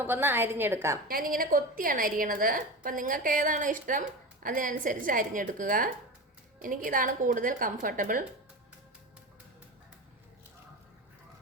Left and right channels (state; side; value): normal; both; correlation 0.26